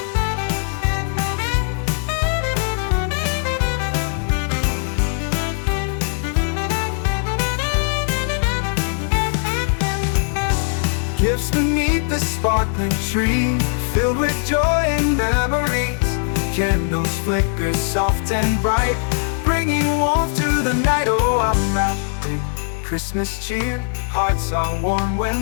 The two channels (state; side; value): silent; right; 66 dB below the other